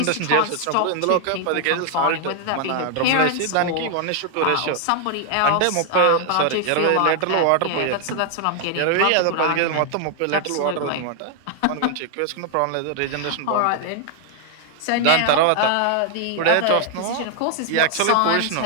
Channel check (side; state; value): both; different; correlation 0.00